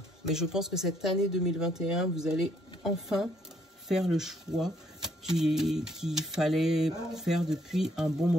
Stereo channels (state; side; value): normal; both; correlation 0.68